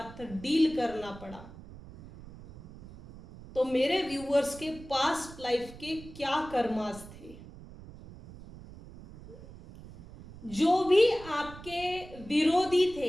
डील करना पड़ा। तो मेरे व्यूवर्स के पास्ट लाइफ के क्या कर्मास थे, जो भी आपके विरोधी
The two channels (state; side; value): noise; right; rumble, 17 dB below the sound